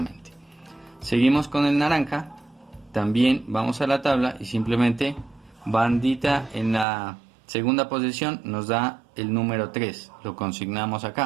Seguimos con el naranja, también vamos a la tabla y simplemente bandita en la segunda posición nos da el número 3, lo consignamos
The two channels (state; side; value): drops out; left; at 6.9 s